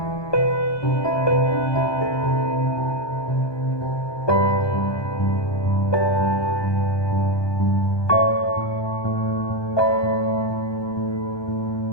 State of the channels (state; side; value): late; right; 1.2 ms